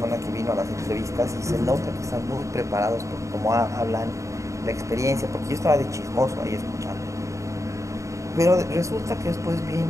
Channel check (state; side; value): late; left; 0.15 ms